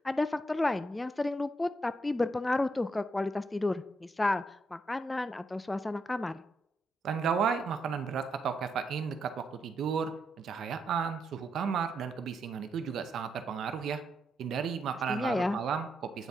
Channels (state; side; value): normal; both; correlation 0.80